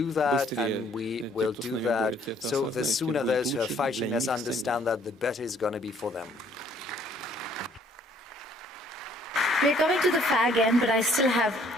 that, and we will do that. So the sooner those who are fighting us understand that, the better it's going to be for them. We're coming to the fag end, but I still have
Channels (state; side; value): normal; both; correlation 0.62